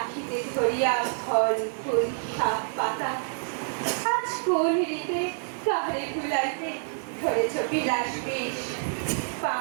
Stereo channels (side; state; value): left; silent; 58 dB below the other